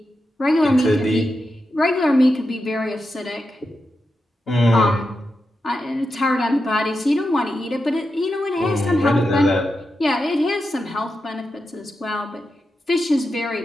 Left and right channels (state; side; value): normal; both; correlation 0.88